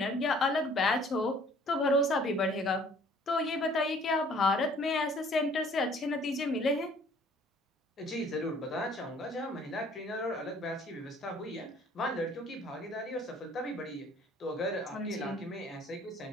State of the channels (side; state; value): both; normal; correlation 0.56